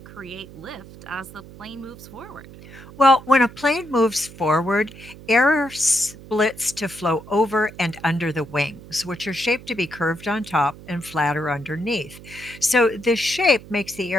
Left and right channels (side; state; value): right; noise; hum, 18 dB below the sound